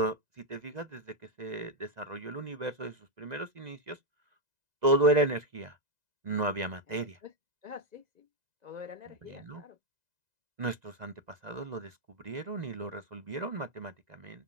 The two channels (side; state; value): left; late; 2.0 ms